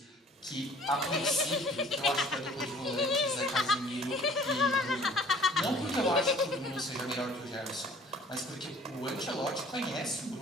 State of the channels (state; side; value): normal; both; correlation 0.52